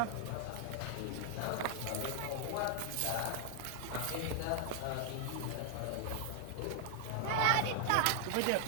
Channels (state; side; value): different; both; correlation 0.00